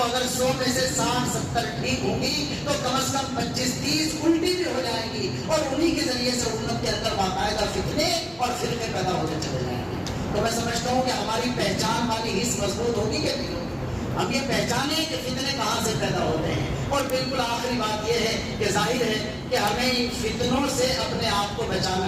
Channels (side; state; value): both; identical; correlation 1.00